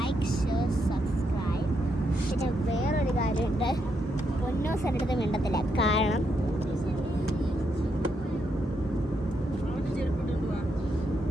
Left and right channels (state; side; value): normal; both; correlation 0.80